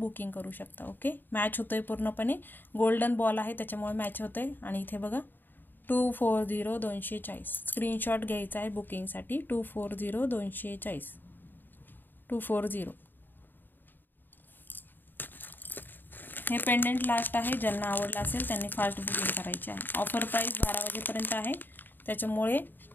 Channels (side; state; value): right; late; 0.092 ms